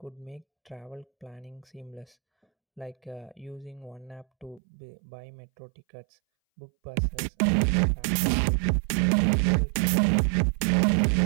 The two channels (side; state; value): left; drops out; at 4.6 s